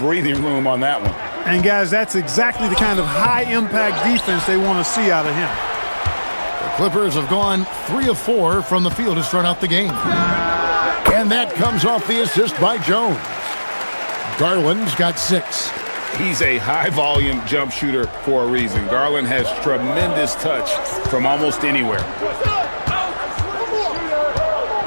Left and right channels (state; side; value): inverted; both; correlation -1.00